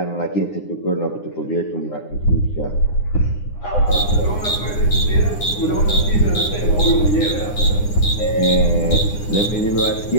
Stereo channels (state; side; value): late; right; 9.8 ms